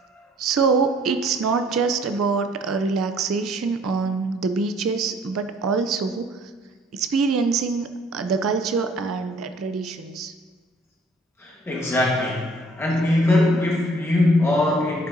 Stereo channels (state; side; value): normal; both; correlation 0.59